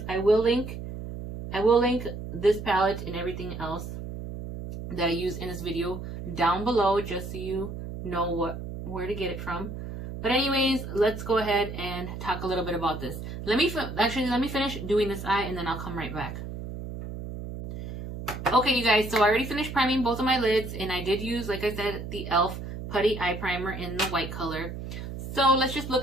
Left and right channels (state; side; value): noise; right; hum, 8 dB below the sound